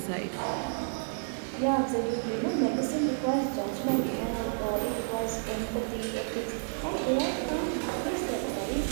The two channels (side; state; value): left; silent; 57 dB below the other